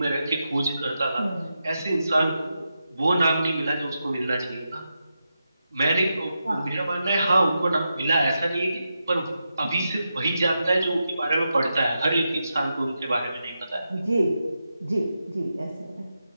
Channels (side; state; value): both; inverted; correlation -0.88